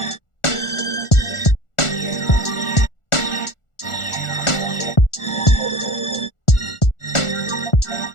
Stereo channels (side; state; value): right; late; 1.4 ms